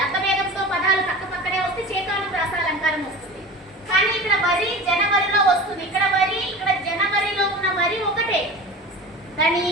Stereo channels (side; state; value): both; normal; correlation 0.34